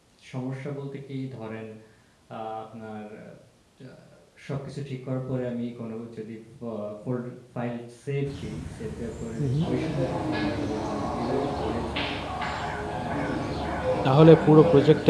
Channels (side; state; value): both; identical; correlation 1.00